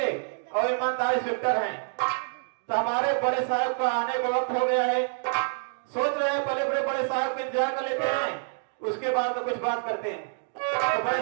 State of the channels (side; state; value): left; silent; digital silence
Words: और ईमानदार इंस्पेक्टर हैं। तो हमारे बड़े साहब का आने का वक्त हो गया है। सोच रहे हैं पहले बड़े साहब का इंतजार कर लेते हैं, उसके बाद तो कुछ बात करते हैं। तो